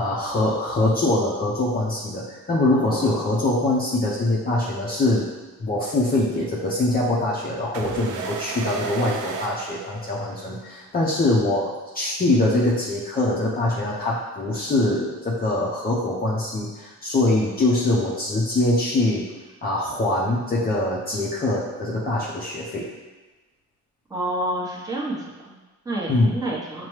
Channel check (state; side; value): normal; both; correlation 0.46